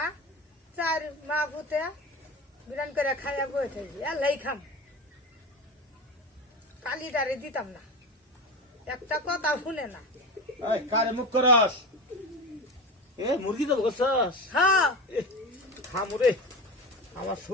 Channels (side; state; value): both; normal; correlation 0.26